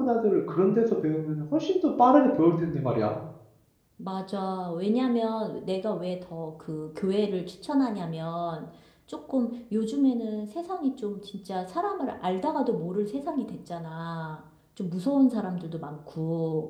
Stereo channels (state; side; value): identical; both; correlation 1.00